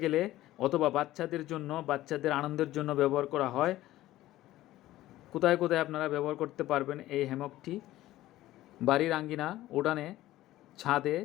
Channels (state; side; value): quieter; right; 15.4 dB